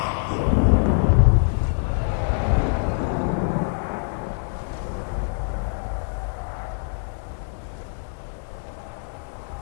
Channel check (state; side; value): silent; right; 62 dB below the other